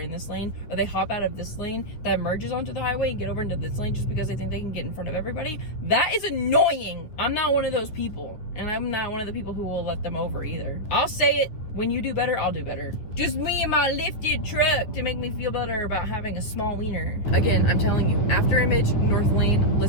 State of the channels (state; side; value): late; right; 9.4 ms